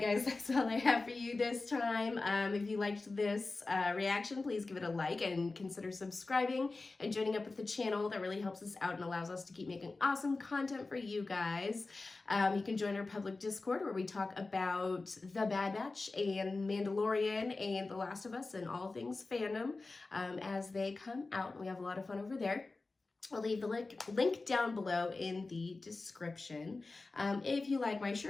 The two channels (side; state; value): right; quieter; 3.6 dB